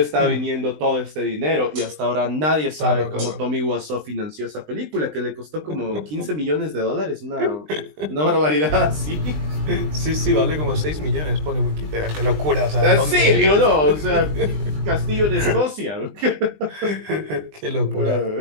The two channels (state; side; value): late; left; 20 ms